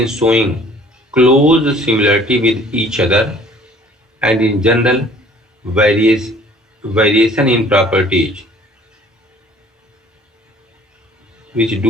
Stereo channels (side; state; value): both; normal; correlation 0.53